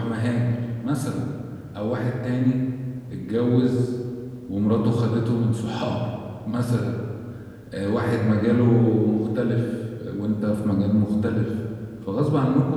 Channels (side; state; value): both; identical; correlation 1.00